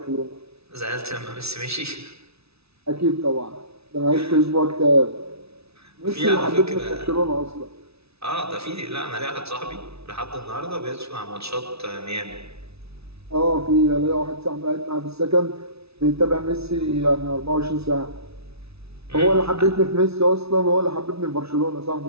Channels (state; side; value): late; left; 0.79 ms